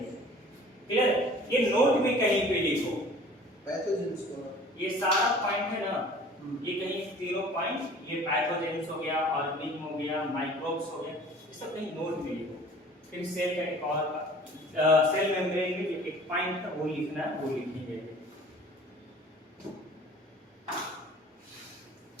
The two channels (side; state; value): both; normal; correlation 0.47